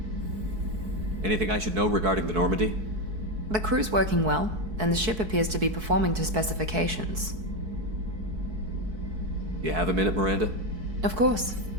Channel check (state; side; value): late; left; 4.6 ms